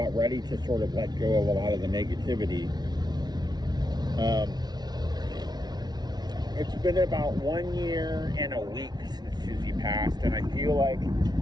ready to sort of let go of a lot of the negativity. It's been about 1 year and a week since Susie passed, and I feel like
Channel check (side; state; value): left; late; 0.19 ms